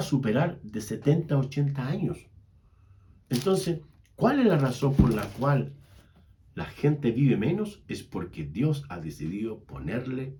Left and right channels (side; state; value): both; identical; correlation 1.00